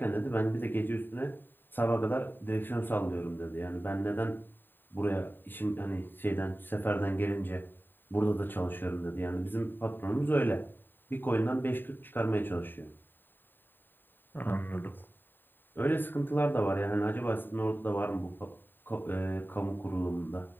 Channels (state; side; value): late; right; 0.094 ms